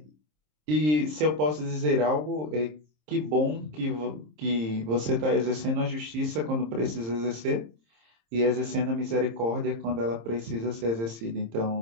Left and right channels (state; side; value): late; left; 26 ms